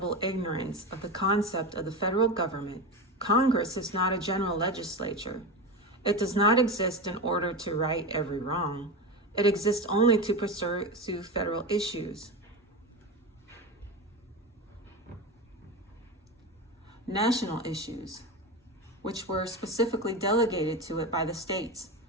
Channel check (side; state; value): both; normal; correlation 0.22